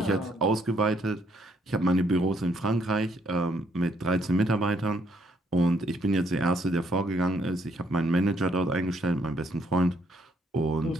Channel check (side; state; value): both; normal; correlation 0.70